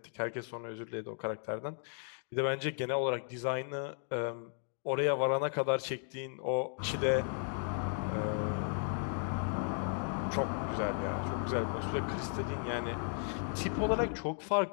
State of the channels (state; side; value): silent; right; 54 dB below the other